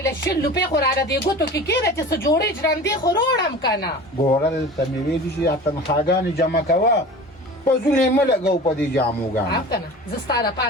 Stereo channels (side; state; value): both; normal; correlation 0.37